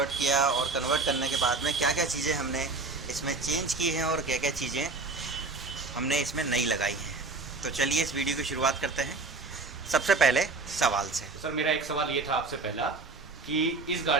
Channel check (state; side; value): quieter; left; 3.7 dB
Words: किया और कन्वर्ट करने के बाद में क्या क्या चीज़ें हमने इसमें चेंज की हैं और क्या क्या चीज़ें हमने इसमें नई लगाई हैं। तो चलिए इस वीडियो की शुरुआत करते हैं सबसे पहले सवाल से। सर मेरा एक सवाल ये था आपसे पहला कि इस